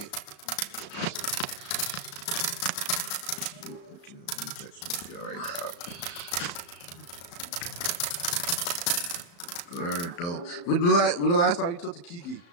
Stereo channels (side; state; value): right; late; 35 ms